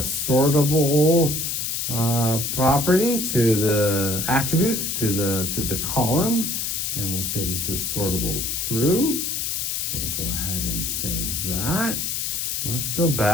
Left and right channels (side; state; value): left; noise; hiss, 1 dB below the sound